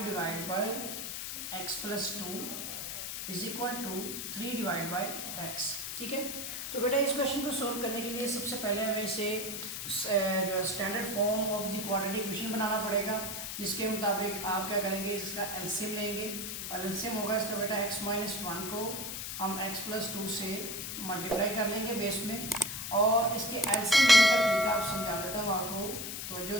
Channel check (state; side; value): noise; left; hiss, 5 dB below the sound